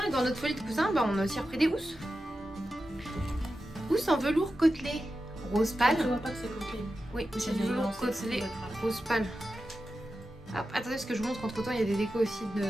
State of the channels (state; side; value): normal; both; correlation 0.92